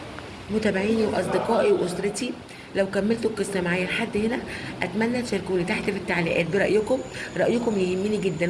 متابعيني واصدقائي واسرتي، لو كملتوا القصه معايا لحد هنا اتمنى تشاركوني تحت في التعليقات برايكم. رايكم يهمني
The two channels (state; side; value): identical; both; correlation 1.00